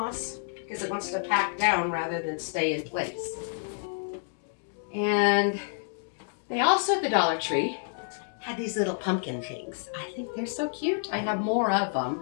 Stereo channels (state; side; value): silent; right; digital silence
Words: because it wants to pack down rather than stay in place. And they also at the Dollar Tree had these little pumpkin things. I think they're so cute. I have more of